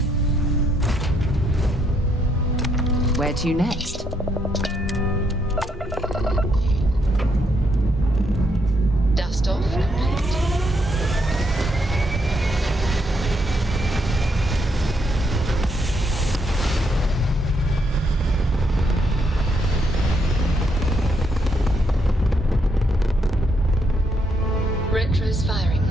Where to next? Dust off and paint. Retro's firing.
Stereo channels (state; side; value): normal; both; correlation 0.75